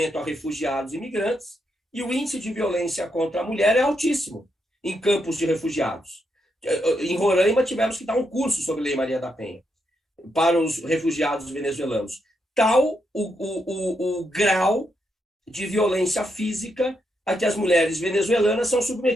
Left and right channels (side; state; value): both; normal; correlation 0.81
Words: a refugiados e imigrantes, e o índice de violência contra a mulher é altíssimo em campos de refugiados. Em Roraima, tivemos que dar um curso sobre Lei Maria da Penha para os refugiados venezuelanos. Tal o grau de violência física a que as mulheres venezuelanas são